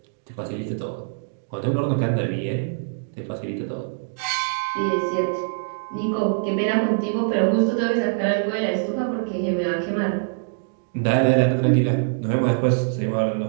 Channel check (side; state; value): left; silent; digital silence